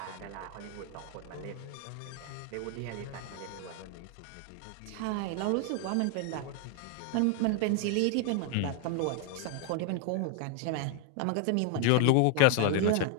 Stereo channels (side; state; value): both; different; correlation 0.01